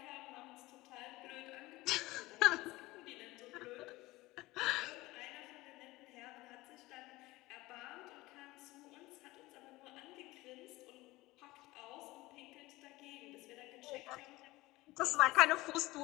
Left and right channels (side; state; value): right; quieter; 19.6 dB